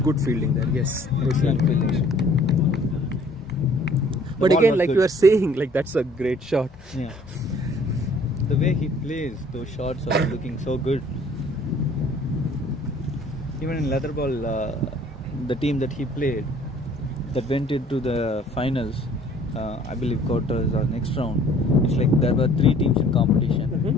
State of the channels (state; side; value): normal; both; correlation 0.56